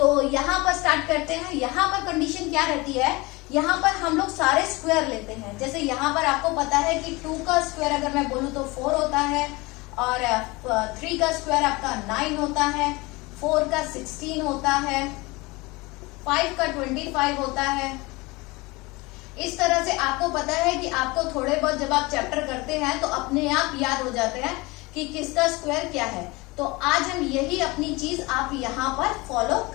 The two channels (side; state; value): right; quieter; 23.6 dB